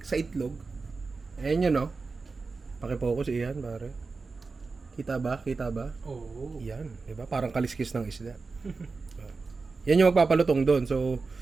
sa itlog. Ayan yun o. Pakifocus, iyan, pare. Kita ba? Oo. Yan, diba? Parang kaliskis ng isda. Yan yung magpapalutong doon. So,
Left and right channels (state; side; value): quieter; left; 4.2 dB